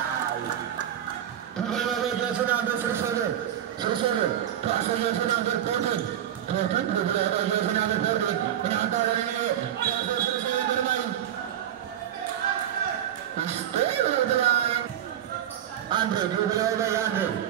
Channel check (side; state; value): left; quieter; 10.7 dB